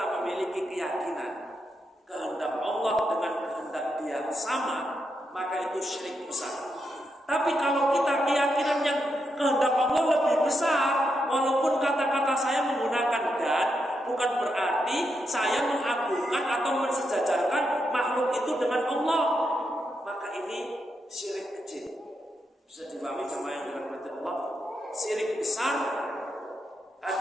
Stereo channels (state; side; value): normal; both; correlation 0.83